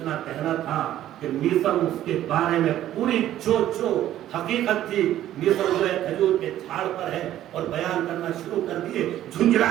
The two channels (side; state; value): left; quieter; 12.6 dB